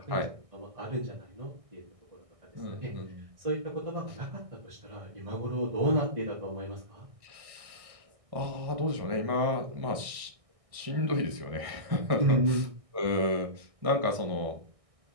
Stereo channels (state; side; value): late; left; 1.6 ms